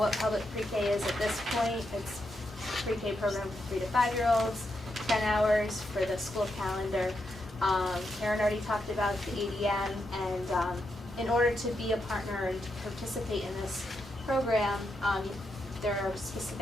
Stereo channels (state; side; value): normal; both; correlation 0.83